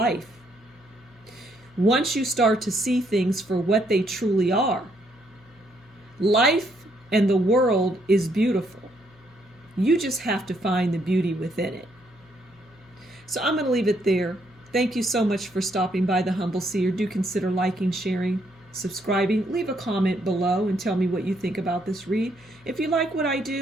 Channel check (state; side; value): noise; left; hum, 27 dB below the sound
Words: Once you start to see things for what they truly are, life and the world is beautiful. You just have to find the beauty within it. So I'm going to leave it there. Thank you so much for stopping by the Humble Seer. Do consider liking, sharing, subscribing. Leave a comment below and tell me what you think about this read. If you like what I